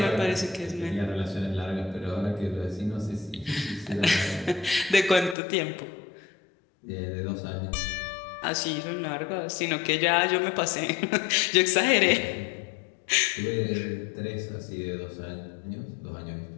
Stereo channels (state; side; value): drops out; right; at 5.4 s